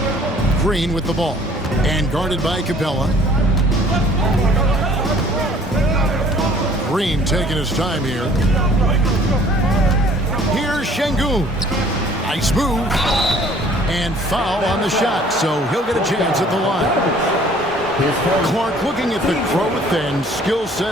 Green with the ball. And guarded by Capella. Green taking his time here. Here's Şengün. Nice move. And foul on the shot, so he'll get a chance at the line. Clark, looking at the growth and skill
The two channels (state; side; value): normal; both; correlation 0.55